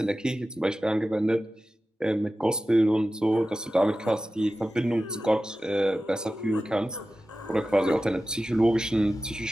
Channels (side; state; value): both; normal; correlation 0.94